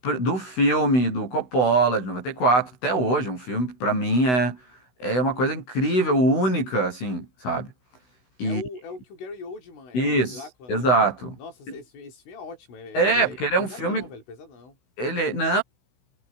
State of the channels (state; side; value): late; right; 16 ms